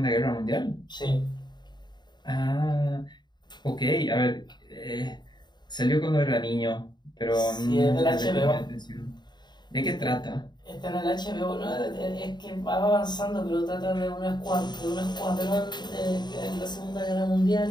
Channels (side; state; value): right; late; 0.21 ms